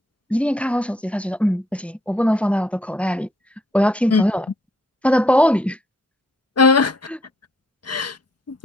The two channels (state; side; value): normal; both; correlation 0.69